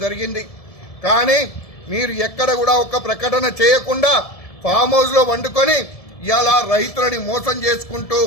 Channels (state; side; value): late; right; 1.7 ms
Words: జరిగింది. కానీ మీరు ఎక్కడ కూడా ఒక ప్రకటన చేయకుండా ఫామ్ హౌస్ లో వండుకొని ఇలా రైతులని మోసం చేసుకుంటూ